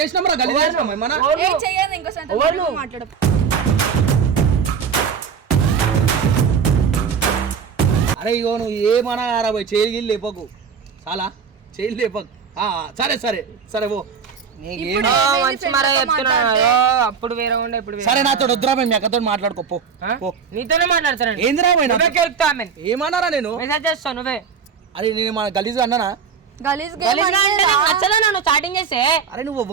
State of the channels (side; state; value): left; quieter; 6.4 dB